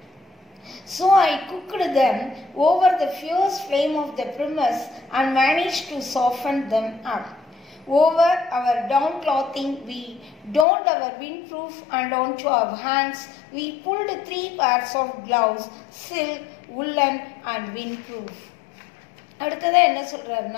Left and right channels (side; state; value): right; drops out; at 10.7 s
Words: So I cooked them over the fierce flame of the primus and managed to soften them up. Over our down clothing we donned our windproof and onto our hands we pulled 3 pairs of gloves, silk, woolen and windproof. அடுத்ததாக என்ன